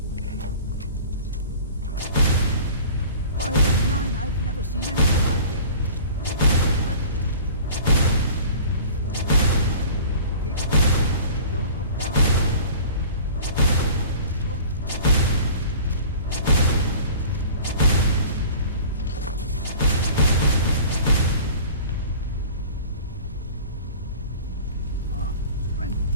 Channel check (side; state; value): both; inverted; correlation -0.43